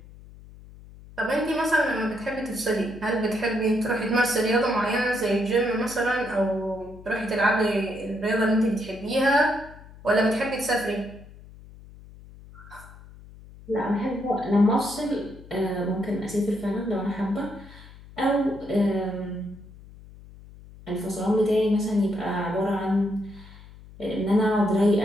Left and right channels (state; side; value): noise; left; hum, 19 dB below the sound